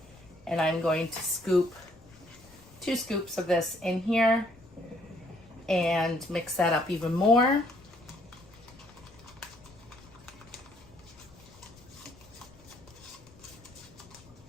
and I'm going to scoop 2 scoops of this in here and mix that up even more.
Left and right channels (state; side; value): noise; left; rumble, 25 dB below the sound